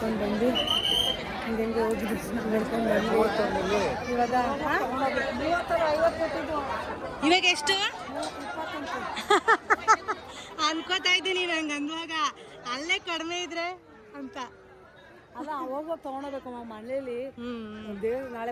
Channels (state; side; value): identical; both; correlation 1.00